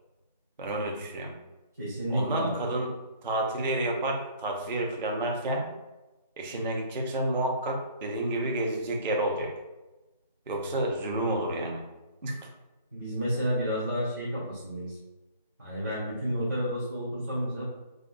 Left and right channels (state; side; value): inverted; both; correlation -0.51